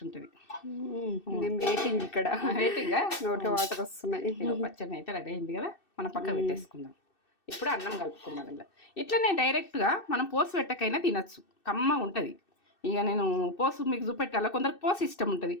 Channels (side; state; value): right; late; 2.6 ms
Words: ఉంటుంది. నేను వెయిటింగ్ ఇక్కడ, రేటింగ్గా నోట్లో వాటర్ వస్తున్నాయి. ఇక పచ్చడి అయితే రెడీ అయింది కదా, మనం పక్క పెట్టేసుకుందాం. ఇప్పుడు అన్నం కలుపుకుందాం. ఇలా ఇట్లనే డైరెక్ట్గా మనం పోసు పెట్టకైనా తినచ్చు, కమ్మ ఉంటుంది. ఇక నేను పోసు మీకు చూపెట్టాలా, కొందరికి పోసు ఇష్టం ఉంటుంది,